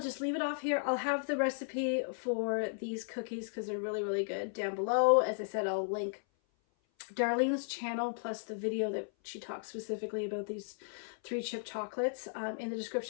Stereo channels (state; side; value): silent; right; 54 dB below the other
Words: leave it off here. I'll have the recipe for these cookies because they're really, really good down below. As I said, I'll link Darlene's channel plus the video that she talks specifically about these 3 chip chocolates in the